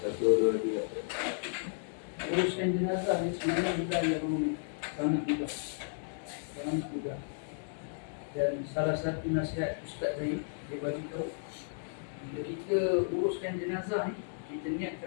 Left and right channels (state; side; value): silent; right; digital silence